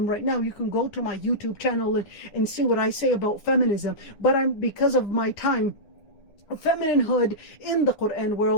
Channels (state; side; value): late; right; 9.9 ms